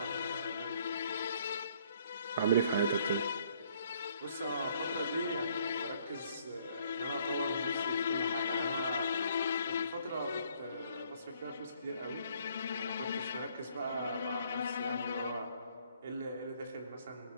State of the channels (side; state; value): both; inverted; correlation -0.64